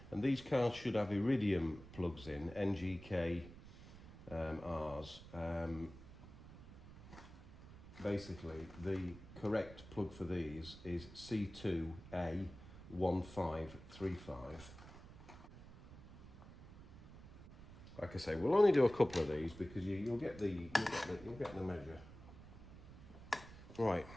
And these cars should have iridium plugs in, NGK Rs. Basically, the correct plug for these is C2A1535. Like I say, we'll only do a couple of these because you'll get the measure. Right,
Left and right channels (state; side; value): noise; right; rumble, 16 dB below the sound